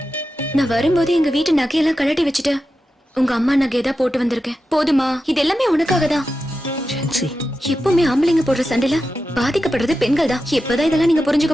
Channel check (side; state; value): both; normal; correlation 0.90